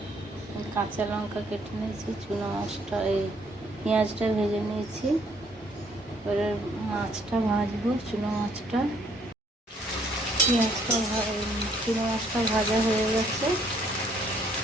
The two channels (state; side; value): normal; both; correlation 0.66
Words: কাঁচা লঙ্কা কেটে নিয়েছি, চুনো মাছটা পেঁয়াজটা ভেজে নিয়েছি। এবারে মাছটা ভাজবো। চুনো মাছটা চুনো মাছটা ভাজা হয়ে গেছে।